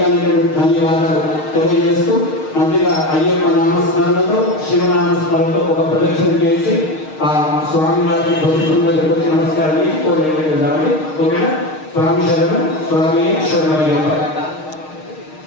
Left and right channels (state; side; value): late; right; 6.5 ms